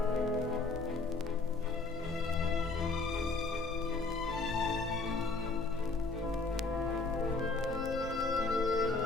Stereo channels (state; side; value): quieter; right; 3.7 dB